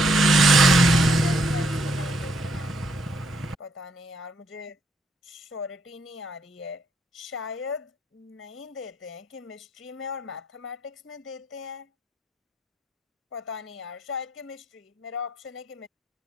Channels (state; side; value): normal; both; correlation 0.73